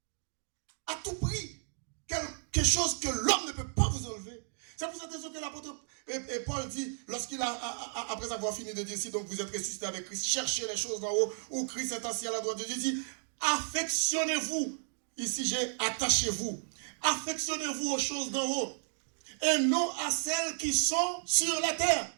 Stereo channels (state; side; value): silent; left; 56 dB below the other